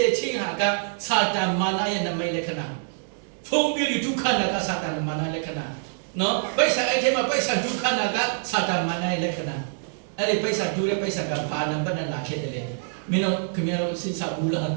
ေချင်းဟာကစာတန်မာနရဲ့နမိတ်လက္ခဏာဖုံးပြီးဒုက္ခနာကစာတန်မာနလက္ခဏာနော်ပိဿာအဲ့ထဲမှာပိဿာဒုက္ခနာကစာတန်မာနရဲ့လက္ခဏာအဲ့ဒီပိဿာဒူရဲ့ပိဿာကဘာနံပါတ်နဲ့လာခဲ့တယ်လေမင်းတို့ခင်ဗျားတို့စဉ်းစားဘူးလားဟမ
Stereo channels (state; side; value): silent; left; digital silence